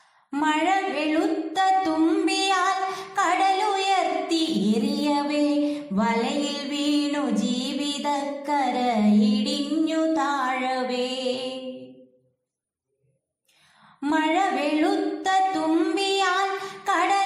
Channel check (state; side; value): identical; both; correlation 1.00